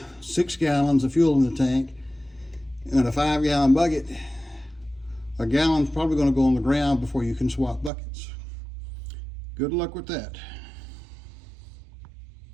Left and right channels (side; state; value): left; drops out; at 7.9 s